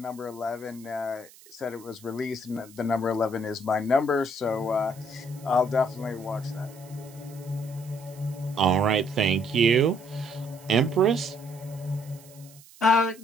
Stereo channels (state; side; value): noise; right; hiss, 23 dB below the sound